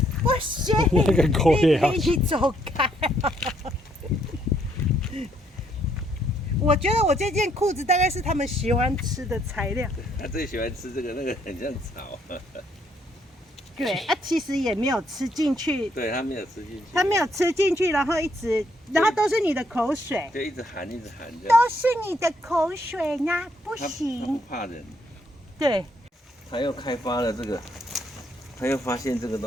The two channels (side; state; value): both; normal; correlation 0.71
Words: 不行，那个狗也要你走开。我觉得我这件裤子大概是他们喜欢吃的材料。他最喜欢吃这个，那个很像草。对啊，其实也没有吃进去，对他没有吃进去，他没有吃进去，然后都是你的口水，就一直含这样。都是你的口水呢，不他行不。怕人，对，他又开发了这个，他又发现这个